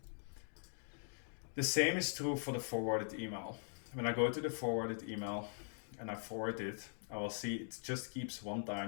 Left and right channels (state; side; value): silent; right; digital silence